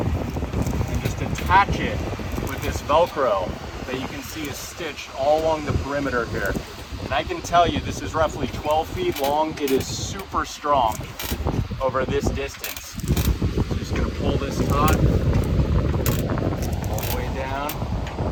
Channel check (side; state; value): both; identical; correlation 1.00